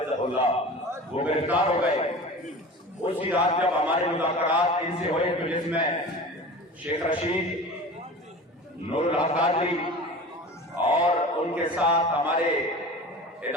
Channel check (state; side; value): normal; both; correlation 0.36